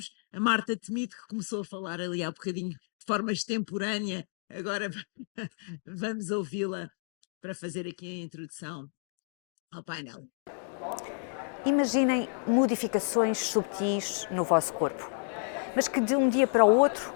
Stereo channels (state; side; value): silent; right; digital silence